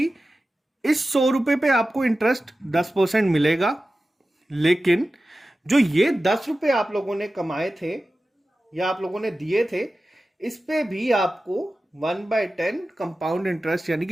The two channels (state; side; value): normal; both; correlation 0.94